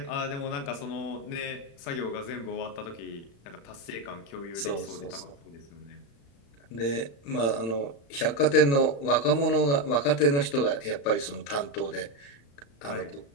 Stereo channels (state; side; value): late; right; 35 ms